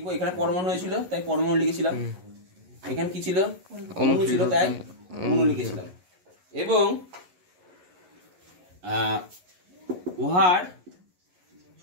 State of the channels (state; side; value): late; left; 11 ms